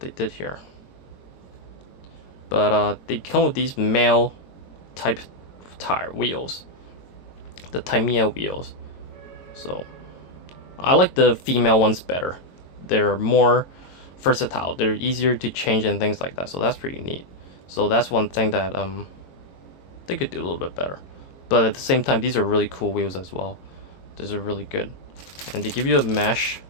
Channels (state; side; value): late; right; 22 ms